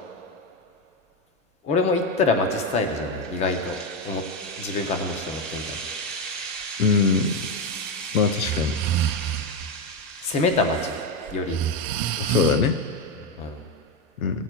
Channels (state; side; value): normal; both; correlation 0.09